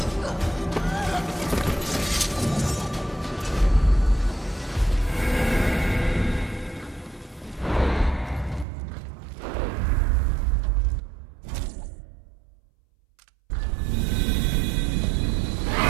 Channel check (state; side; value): drops out; left; at 8.7 s